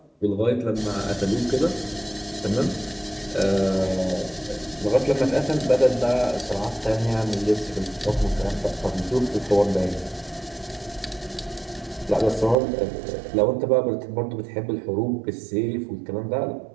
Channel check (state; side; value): drops out; left; at 12.6 s